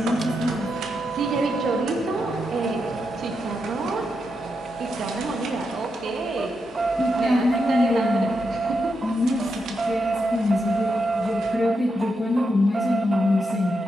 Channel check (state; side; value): normal; both; correlation 0.84